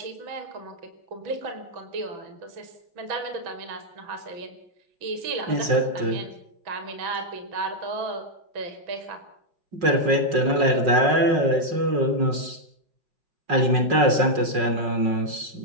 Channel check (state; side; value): late; left; 5.4 ms